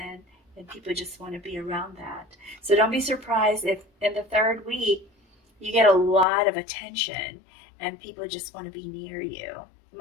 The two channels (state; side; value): drops out; right; at 6.2 s